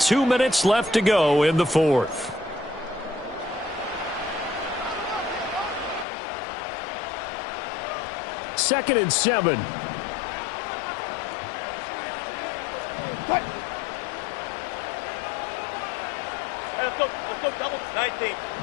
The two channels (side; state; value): right; drops out; at 6.1 s